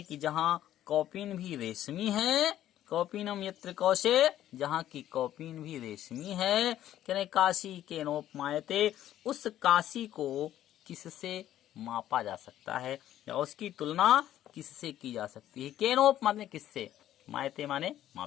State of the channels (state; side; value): quieter; right; 12.3 dB